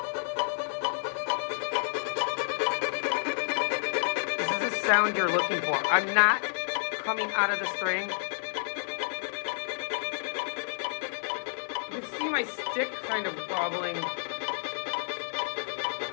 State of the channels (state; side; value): silent; right; 58 dB below the other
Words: This is the sound you're looking for. I'm not coming out of the string. You can see my stick kind of wobbling.